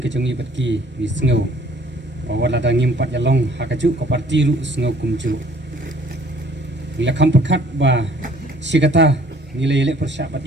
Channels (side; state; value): both; normal; correlation 0.57